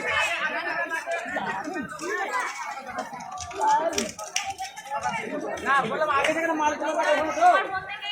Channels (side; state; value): both; identical; correlation 1.00